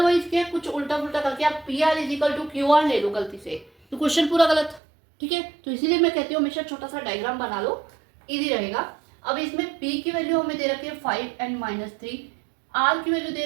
क्या कुछ उल्टा पुल्टा करके आप P R is equal to Q R ले लो गलती से, तो क्वेश्चन पूरा गलत। ठीक है, तो इसीलिए मैं कहती हूँ हमेशा छोटा सा डायग्राम बना लो, इजी रहेगा। अब इसमें P की वैल्यू हमें दे रखी है 5 एंड -3, R की वैल्यू दे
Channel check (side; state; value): left; drops out; at 4.8 s